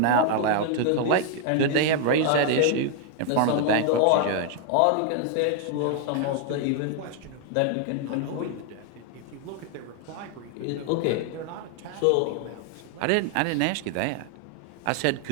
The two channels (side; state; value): both; different; correlation 0.00